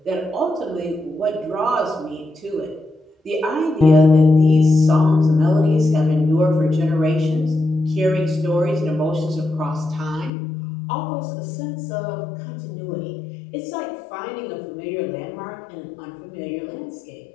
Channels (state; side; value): drops out; right; at 10.3 s